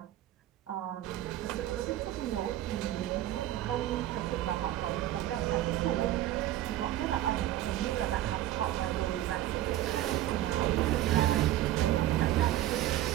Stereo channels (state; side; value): quieter; left; 13.7 dB